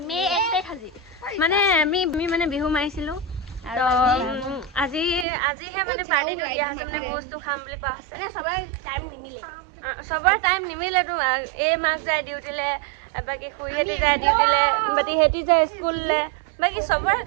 মে 1 তাৰিখ আজি মানে আমি মানে বিহু মাৰিছিলো। তো আজিহে মানে পাৰ্টিটো দিয়া হৈছে, মানে ভোজটো খাম বুলি কোৱা হৈছে। চবৰে টাইম নিমিলেতো। এই মাক যায় ডিউটিলে, বাকী খুৰীহঁতি যায় ডিউটিলে, বাকী সিহঁতি যায় স্কুললে, বাকী চবৰে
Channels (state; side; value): drops out; left; at 5.2 s